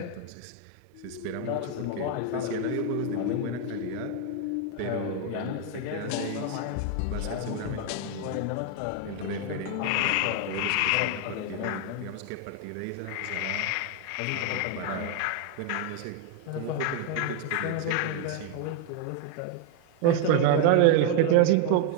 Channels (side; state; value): both; different; correlation 0.01